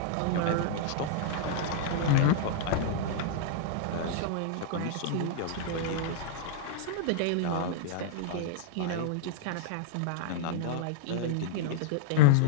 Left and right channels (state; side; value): different; both; correlation -0.01